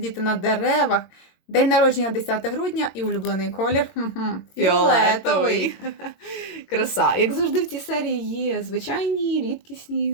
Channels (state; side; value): late; right; 22 ms